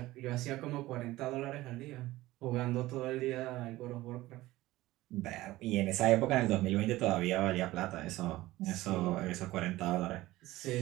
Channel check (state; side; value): quieter; left; 17.5 dB